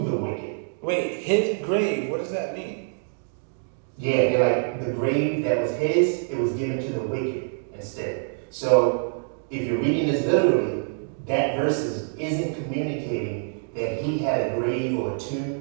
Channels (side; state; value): left; silent; digital silence